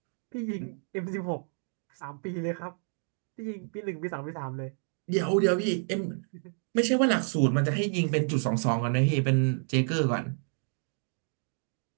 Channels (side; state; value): left; silent; 58 dB below the other